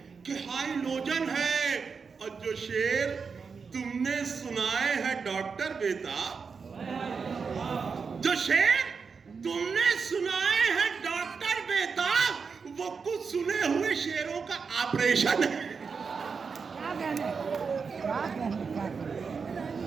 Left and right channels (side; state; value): left; quieter; 5.4 dB